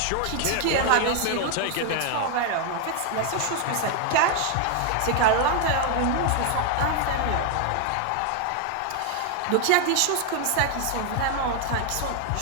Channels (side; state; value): both; different; correlation 0.00